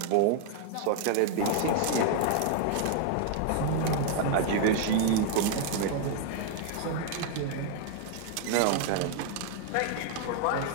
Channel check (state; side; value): different; both; correlation 0.00